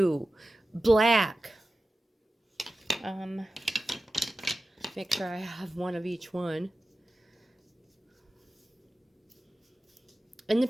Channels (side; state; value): both; normal; correlation 0.94